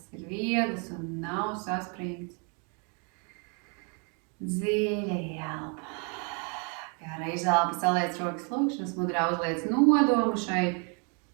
ir viegls un nav saspringts. Dziļa ielpa. Gara izelpa, saliec rokas lūkšanas mudrā, uzliec nodomu šai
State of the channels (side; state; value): left; quieter; 37.0 dB